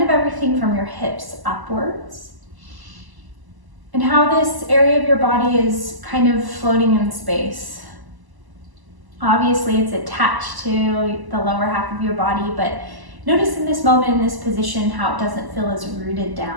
of everything from your hips upwards. And how this area of your body is kind of floating in space. Obviously, it's attached to the lower half of your body, but notice in this moment, in this position, how it doesn't feel as rooted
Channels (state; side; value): late; left; 1.0 ms